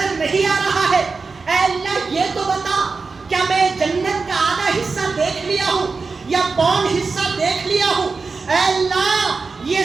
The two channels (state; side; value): quieter; left; 4.4 dB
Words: نہیں آ رہا ہے. اے اللہ یہ تو بتا کیا میں جنت کا آدھا حصہ دیکھ لیا ہوں یا پون حصہ دیکھ لیا ہوں. اے اللہ یہ